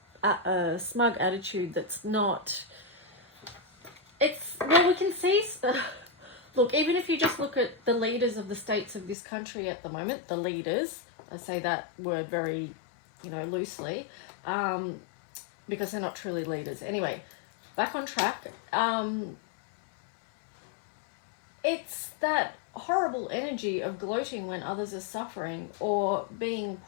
smug attitude that's not, well, we can see look, even if you just look at the leaders of the states of this country at the moment, the leaders, I say that word very, you know, loosely, because they're not truly leaders. Anyway, back on track. It's that horrible energy of gloating when others are suffering, or being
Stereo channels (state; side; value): drops out; right; at 9.2 s